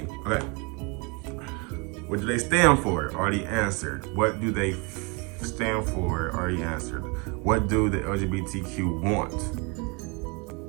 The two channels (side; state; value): left; quieter; 31.0 dB